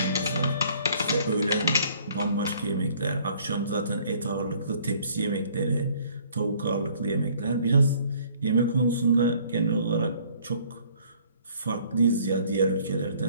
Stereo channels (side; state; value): both; inverted; correlation -0.58